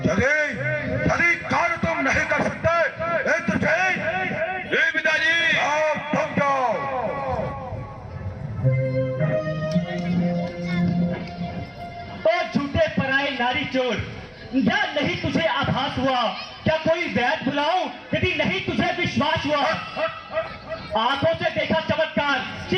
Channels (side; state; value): both; identical; correlation 1.00